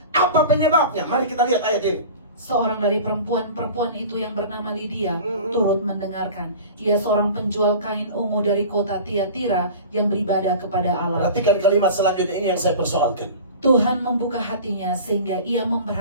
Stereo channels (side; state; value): both; inverted; correlation -0.38